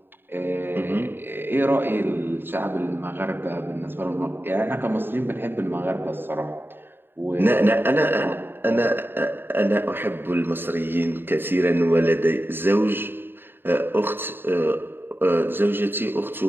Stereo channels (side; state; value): left; late; 0.10 ms